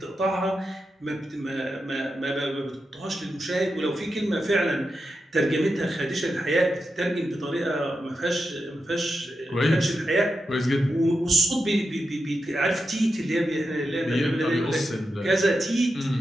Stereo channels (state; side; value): normal; both; correlation 0.88